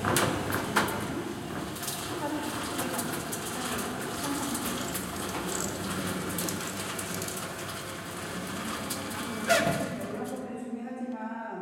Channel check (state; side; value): identical; both; correlation 1.00